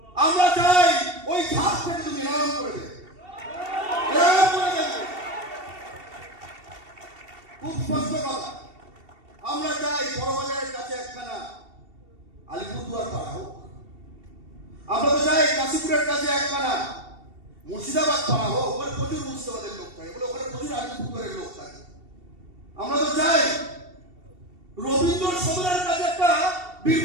আমরা চাই ওই ঘাট থেকে তুমি এরকম করে দেবে, এরকম করে দেখবে। খুব স্পষ্ট কথা, আমরা চাই বড়বাজারের কাছে একখানা আলিপুরদুয়ার পাড়া হোক, আমরা তো চাই কাশীপুরের কাছে একখানা মুর্শিদাবাদ পাড়া হোক। ওখানে প্রচুর মুর্শিদাবাদের লোক থাকে, বলে ওখানে প্রচুর আলিপুরদুয়ারের লোক থাকে। আমরা তো চাই রবীন্দ্র সদনের কাছে একটা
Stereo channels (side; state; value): left; late; 2.7 ms